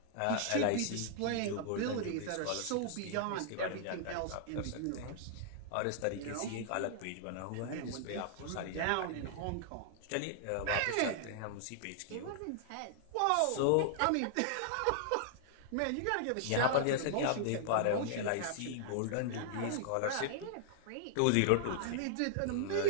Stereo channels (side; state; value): both; different; correlation -0.01